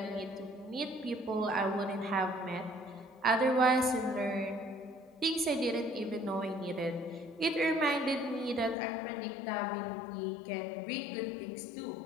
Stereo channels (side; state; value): right; drops out; at 8.8 s